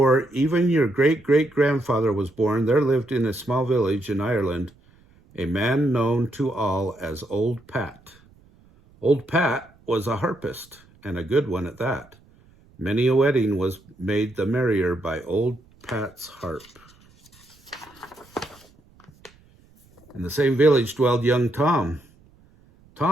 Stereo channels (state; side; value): noise; right; rumble, 29 dB below the sound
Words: even your great-great-grandfather was born, there lived in a small village in Ireland a man known to all as Old Pat. Old Pat was a harpist, and a good one at that. Many a wedding was made the merrier by Old Pat's harp. In the same village dwelled young Tom.